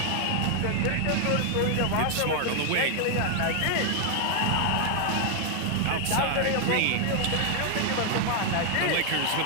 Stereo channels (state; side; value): different; both; correlation 0.00